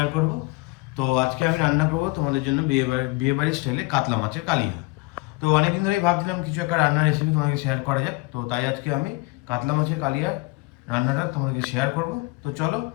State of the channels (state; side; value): quieter; right; 25.0 dB